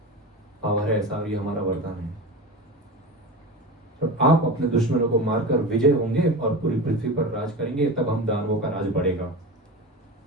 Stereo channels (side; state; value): both; normal; correlation 0.27